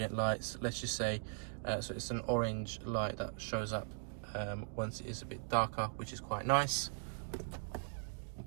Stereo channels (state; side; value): silent; left; digital silence